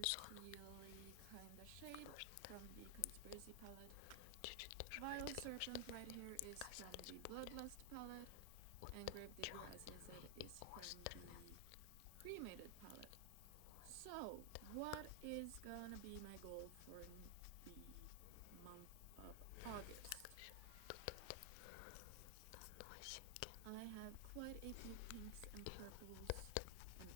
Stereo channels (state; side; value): different; both; correlation 0.00